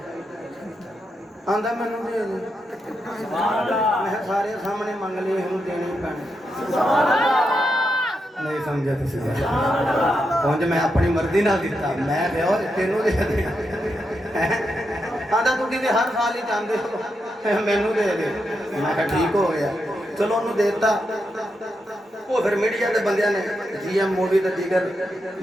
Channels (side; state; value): both; normal; correlation 0.84